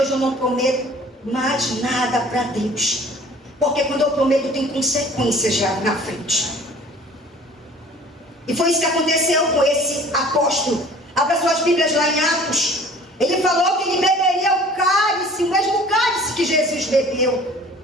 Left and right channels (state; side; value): normal; both; correlation 0.49